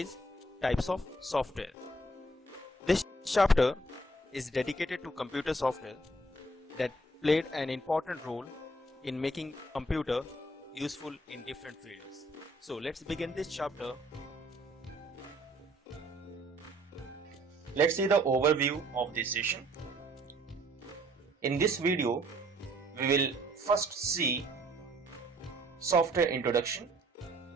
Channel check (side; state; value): both; normal; correlation 0.62